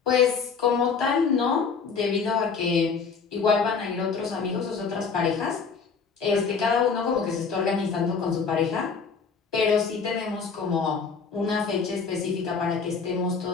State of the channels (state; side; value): quieter; right; 5.5 dB